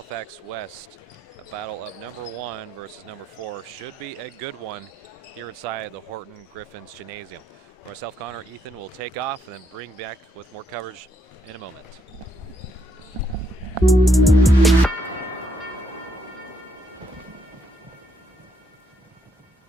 West. A battle of number 1 versus number 4. Should be a good one here inside the Horton Griffins Gymnasium. For myself, Connor, Ethan will take off and then bring back with more coverage in a moment.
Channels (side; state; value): both; normal; correlation 0.74